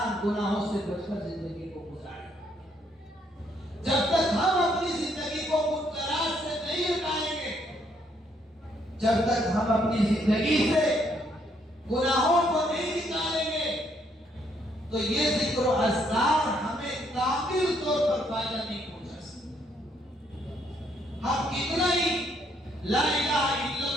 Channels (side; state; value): both; normal; correlation 0.71